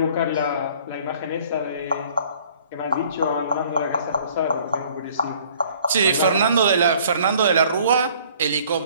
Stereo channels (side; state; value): both; inverted; correlation -0.56